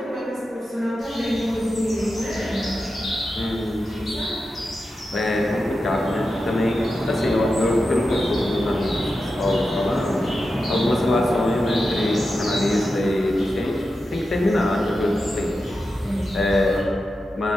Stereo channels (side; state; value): both; normal; correlation 0.90